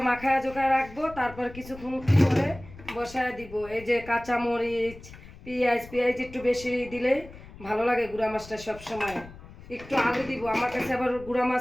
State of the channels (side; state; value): left; noise; rumble, 18 dB below the sound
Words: মাখায়া জোখায় রাখবো, তারপর কিছুক্ষণ করে বসায় দিব। এই যে কাঁচা মরিচ, পেঁয়াজ একটু বেশি দিলে ভালো লাগে গুঁড়া মাছটা সব সময়। একটু আলু দিব, আমার কাছে আবার গুঁড়া